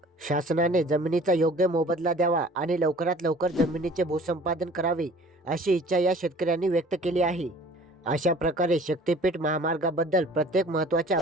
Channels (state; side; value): normal; both; correlation 0.49